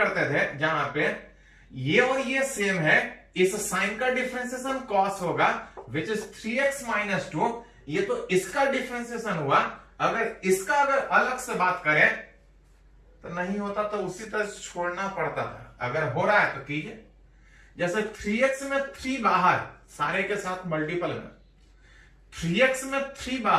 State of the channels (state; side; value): identical; both; correlation 1.00